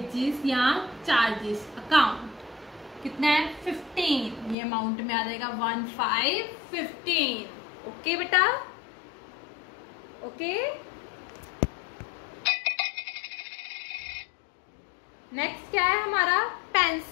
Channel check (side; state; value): right; drops out; at 4.5 s